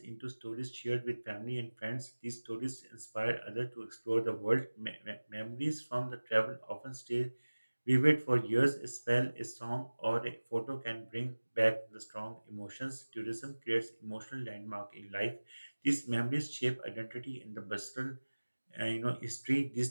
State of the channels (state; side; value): inverted; both; correlation -1.00